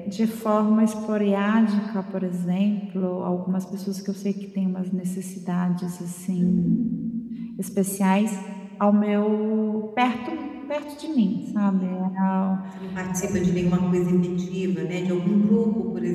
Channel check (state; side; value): identical; both; correlation 1.00